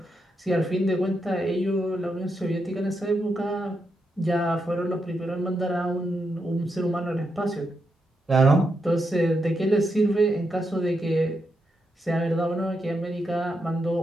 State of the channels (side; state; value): both; normal; correlation 0.83